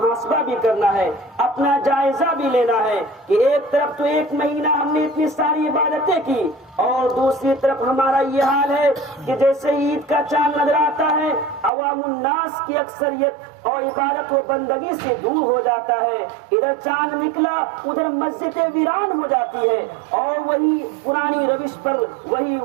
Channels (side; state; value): left; drops out; at 11.7 s